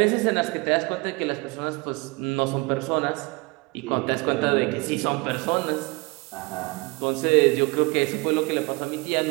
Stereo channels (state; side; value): quieter; left; 26.4 dB